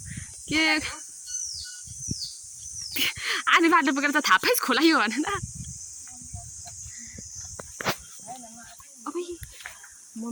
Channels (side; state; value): both; identical; correlation 1.00